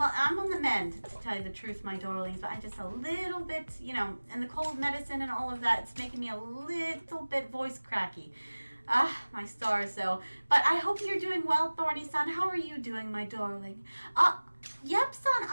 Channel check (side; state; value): both; inverted; correlation -1.00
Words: I'm on the mend, to tell you the truth, my darlings, but I'm just a little bit, you know, and the cold medicine and all of that, it's making me a little bit voice cracky. My stars, though. But I hope you're doing well, Thorny-san. How are you doing, my darling? Yep-san,